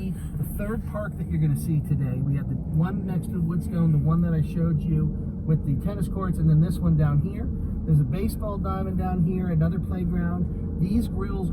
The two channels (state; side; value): identical; both; correlation 1.00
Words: the third park that you're going to see today. We have the one next to the Woodstone, the one that I showed you with the tennis courts, and then this one down here. There's a baseball diamond down here, another playground. These grills